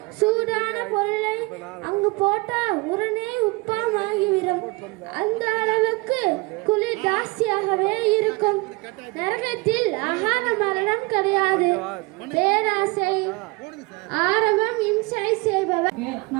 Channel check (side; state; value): left; quieter; 25.5 dB